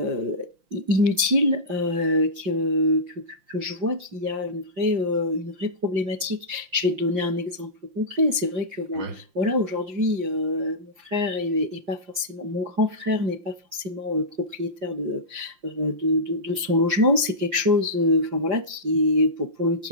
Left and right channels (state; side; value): late; left; 5.7 ms